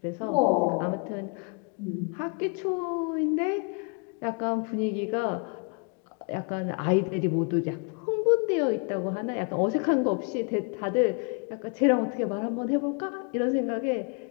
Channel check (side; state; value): right; quieter; 36.2 dB